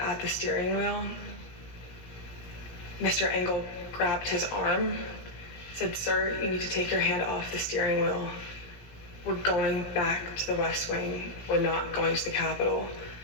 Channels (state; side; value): late; right; 17 ms